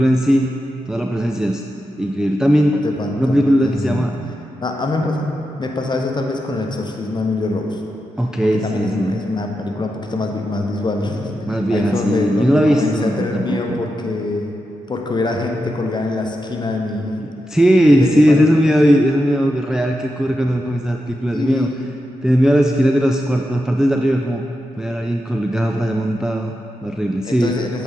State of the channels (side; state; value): both; normal; correlation 0.88